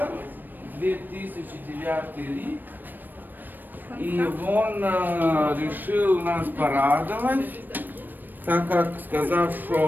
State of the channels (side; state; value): left; late; 0.091 ms